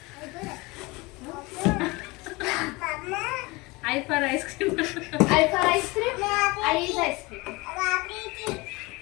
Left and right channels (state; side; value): quieter; right; 24.0 dB